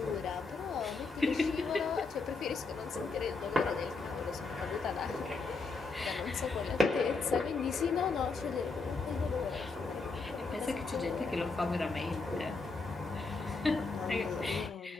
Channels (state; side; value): quieter; right; 4.0 dB